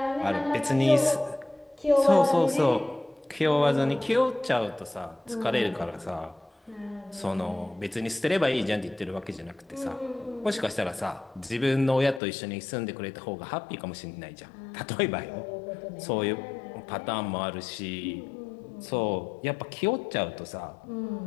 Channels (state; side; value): drops out; right; at 12.2 s